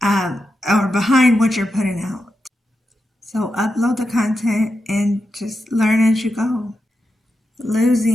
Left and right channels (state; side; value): normal; both; correlation 0.88